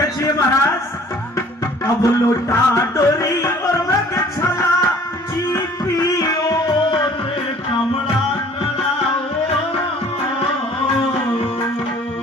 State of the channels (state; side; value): normal; both; correlation 0.53